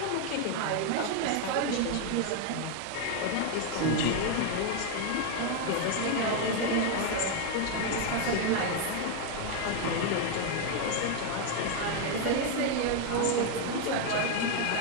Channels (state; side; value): different; both; correlation 0.01